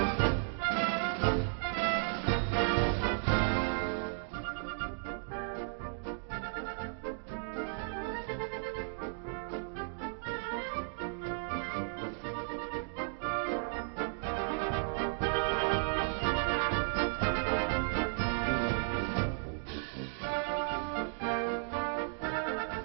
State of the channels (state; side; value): silent; left; digital silence